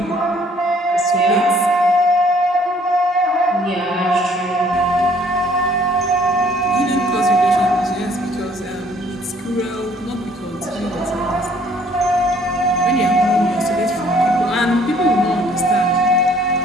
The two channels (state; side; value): normal; both; correlation 0.60